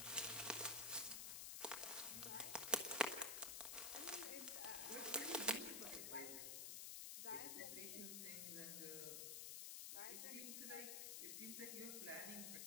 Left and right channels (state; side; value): noise; left; hiss, 2 dB below the sound